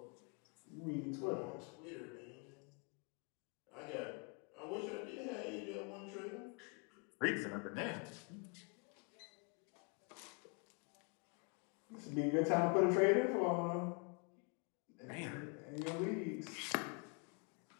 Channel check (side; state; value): right; quieter; 34.3 dB